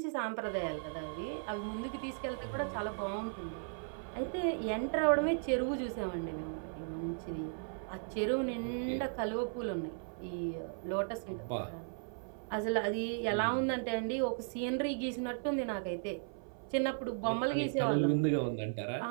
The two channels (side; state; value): left; silent; 54 dB below the other